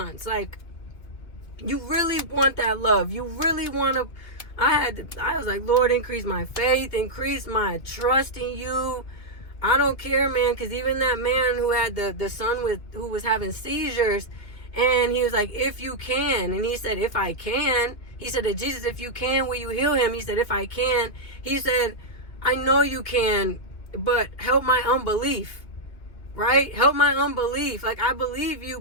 Like, You really want that love. You really want to. I was like, Lord, increase my faith, increase my trust in you. I don't care, man, because even that man who had the son who was having seizures, and he was like, if you can, and he said, if I can, he said to Jesus, if you can, will you heal him? He said, if I can, he said, I know you can, but help my unbelief, right? Help my unbelief. Like, I believe you,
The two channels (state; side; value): late; right; 2.8 ms